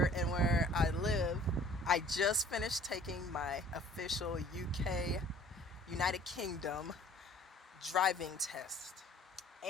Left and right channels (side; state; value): both; normal; correlation 0.52